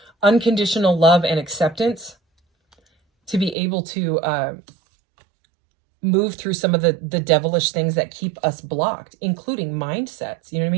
unconditional love and acceptance to be able to move through some of the devilish things that keep us blocked, including mindsets, you know what I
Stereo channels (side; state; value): left; drops out; at 3.6 s